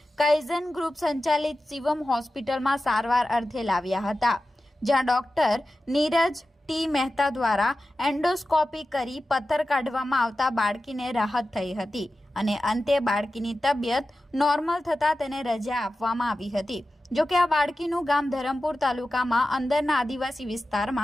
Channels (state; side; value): normal; both; correlation 0.94